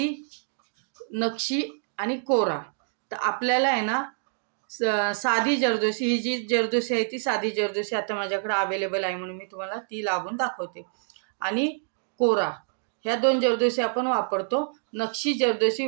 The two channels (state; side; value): silent; left; digital silence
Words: नक्षी आणि कोरा. तर आपल्याला आहे ना साधी जरदोसी, ही जी जरदोसी आहे ती साधी जरदोसी आता माझ्याकडे अवेलेबल आहे म्हणून मी तुम्हाला ती लावून दाखवते. आणि कोरा, ह्या 2 जरदोसी आपण वापरतो, नक्षी जरदोसी